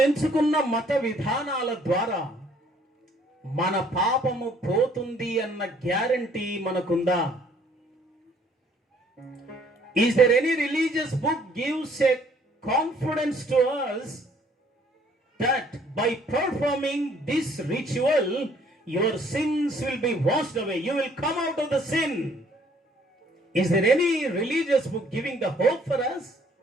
ఎంచుకున్న మత విధానాల ద్వారా మన పాపము పోతుంది అన్న guarantee మనకుందా? Is there any religious book gives a confidence to us that by performing this ritual your sins will be washed away, you will come out of the sin? Is there any religious book giving the hope for us?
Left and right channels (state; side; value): normal; both; correlation 0.61